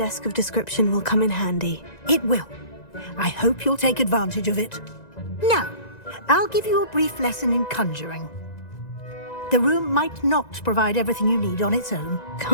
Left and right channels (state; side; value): late; right; 1.9 ms